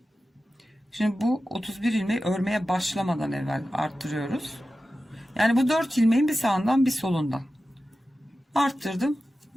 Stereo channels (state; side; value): normal; both; correlation 0.94